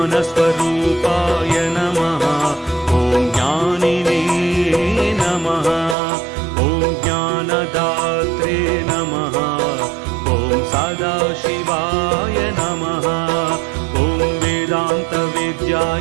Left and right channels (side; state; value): left; drops out; at 6.0 s